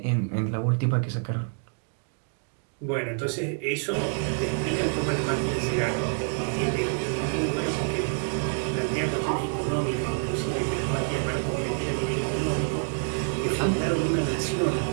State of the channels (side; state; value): left; silent; 55 dB below the other